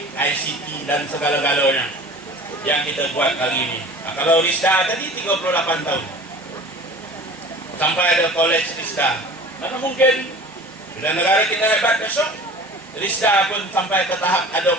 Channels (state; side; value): normal; both; correlation 0.42